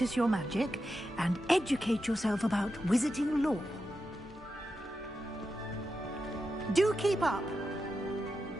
your magic and educate yourself about wizarding lore. Do keep up!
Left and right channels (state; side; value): normal; both; correlation 0.89